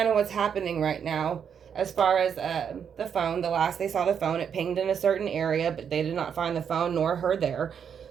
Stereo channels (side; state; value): left; quieter; 7.6 dB